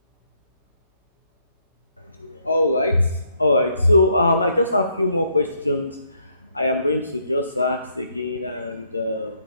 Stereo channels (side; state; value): both; inverted; correlation -0.72